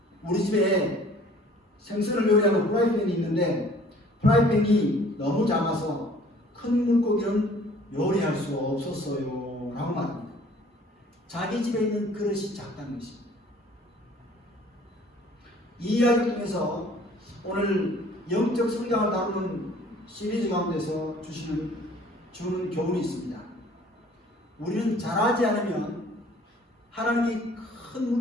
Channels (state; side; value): normal; both; correlation 0.53